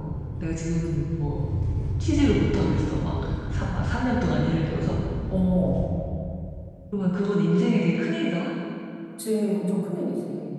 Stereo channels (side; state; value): both; identical; correlation 1.00